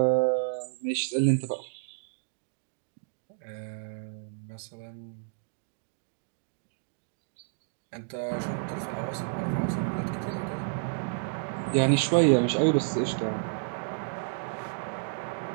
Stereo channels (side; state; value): left; silent; digital silence